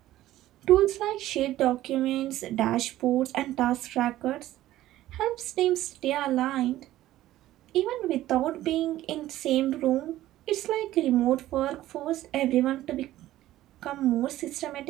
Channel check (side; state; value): left; quieter; 14.7 dB